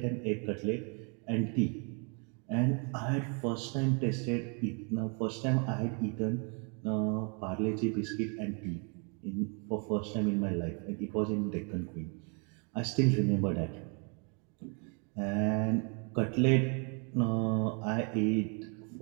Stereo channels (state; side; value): quieter; left; 36.6 dB